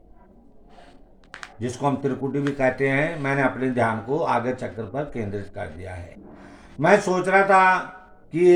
कहते हैं। मैंने अपने ध्यान को आज्ञा चक्र पर केंद्रित कर दिया है। मैं सोच रहा था कि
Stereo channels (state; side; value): identical; both; correlation 1.00